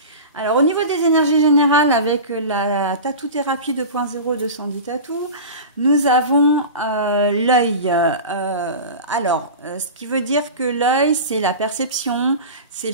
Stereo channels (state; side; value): inverted; both; correlation -0.31